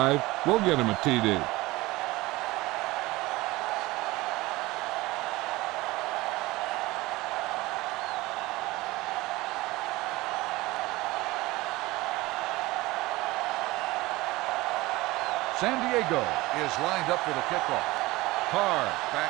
will get them a TD. San Diego is lined up for the kickoff. Carr back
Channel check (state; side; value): quieter; left; 20.2 dB